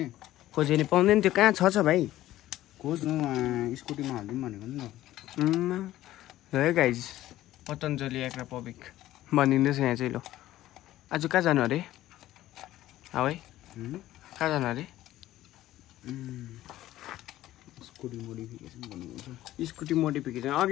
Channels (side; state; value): right; quieter; 14.6 dB